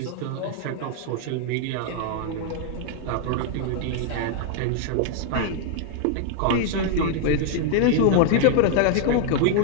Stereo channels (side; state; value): both; different; correlation 0.00